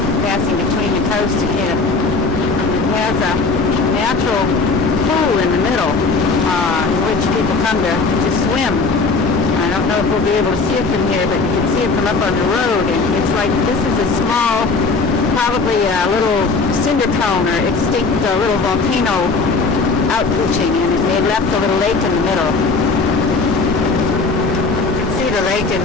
passing between the coast again. It has a natural pool in the middle in which people come to swim. I don't know if we'll be able to see it from here, but you can see it from up on the road, and it's like this is a small, probably a little cinder cone or extinct little volcano outpooching, and they left a little lake in the middle. You can see the lake in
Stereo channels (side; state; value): right; quieter; 4.1 dB